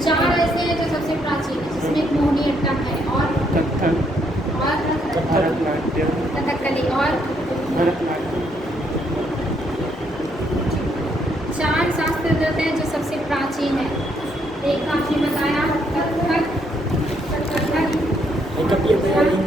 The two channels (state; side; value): normal; both; correlation 0.72